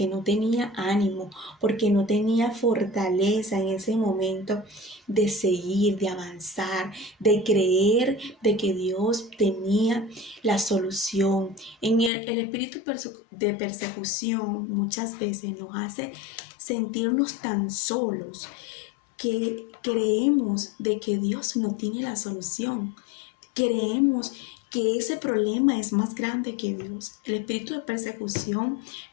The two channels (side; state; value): right; drops out; at 12.1 s